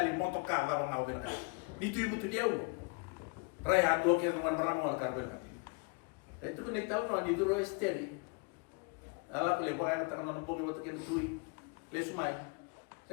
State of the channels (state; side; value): quieter; right; 31.6 dB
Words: motoka va ngau bina ka. Ditu ibu tu dia ulo. Raya do ke no maramo ka bina ka. Itu ni tau no ni duro esteri. Ala ko le baga ka no bogi woto ke tui. Le sumai.